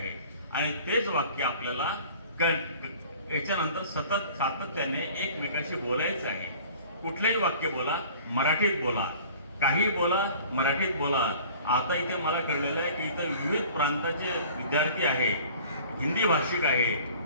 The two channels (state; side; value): inverted; both; correlation -0.47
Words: आणि तेच वाक्य आपल्याला याच्यानंतर सातत्याने एकमेकाशी बोलायचं आहे. कुठलंही वाक्य बोला, मराठीत बोला, काही बोला, मराठीत बोला. आता इथे मला कळलेलं आहे की इथं विविध प्रांताचे विद्यार्थी आहे, हिंदी भाषिक आहे.